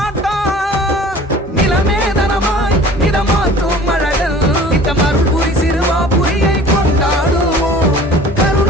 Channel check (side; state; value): both; normal; correlation 0.46